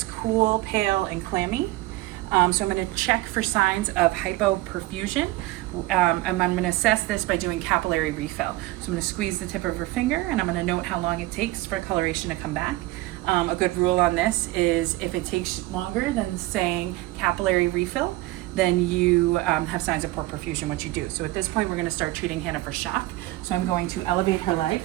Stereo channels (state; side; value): quieter; left; 18.8 dB